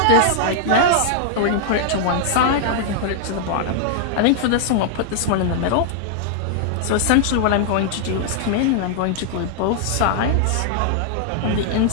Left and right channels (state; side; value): different; both; correlation -0.01